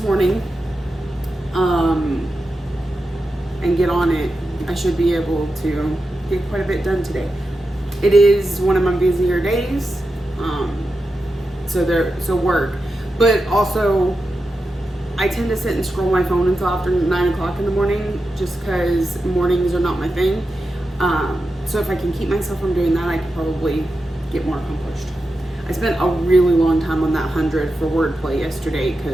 morning and get on it, I should be able to get quite a bit done today. It is one of my busier days. So work, but also I tend to sit and scroll my phone until after 9 o'clock in the morning, just because mornings are not my thing. So if I can keep myself from doing that, I could probably get more accomplished. I spent a really long time on that 100 for wordplay yesterday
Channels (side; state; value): both; normal; correlation 0.90